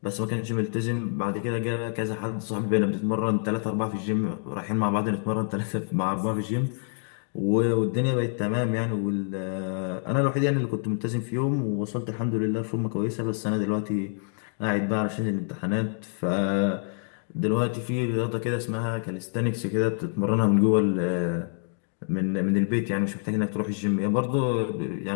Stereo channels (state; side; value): silent; right; 60 dB below the other